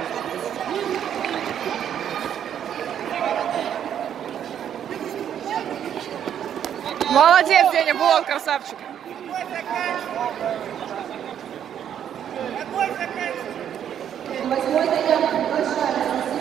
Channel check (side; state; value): left; quieter; 9.5 dB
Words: Молодец, Деня, вот красавчик. Восьмой заявка приглашается.